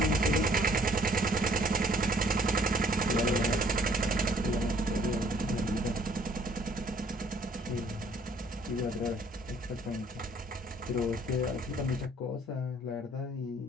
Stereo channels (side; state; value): both; normal; correlation 0.60